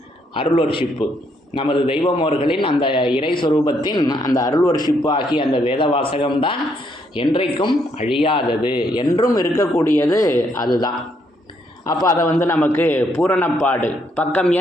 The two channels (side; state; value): both; normal; correlation 0.73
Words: அருள்வர்ஷிப்பு, நமது தெய்வமோர்களின் அந்த இறை சொரூபத்தின் அந்த அருள்வர்ஷிப்பு ஆகிய அந்த வேத வாசகம்தான் என்றைக்கும் அழியாதது, என்றும் இருக்கக்கூடியது அதுதான். அப்போ அதை நமக்கு பூரணப்பாடு பக்கம்